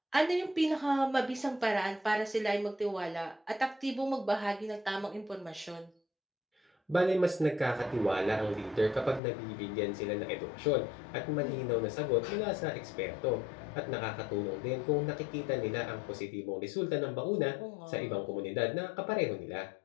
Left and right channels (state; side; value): drops out; right; at 9.2 s